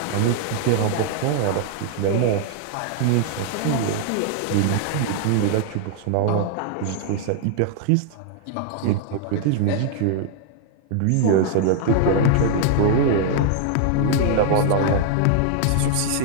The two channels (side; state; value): both; different; correlation 0.00